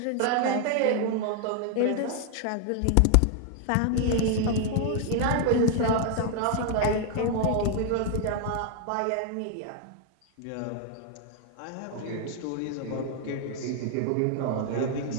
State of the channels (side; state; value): both; different; correlation 0.00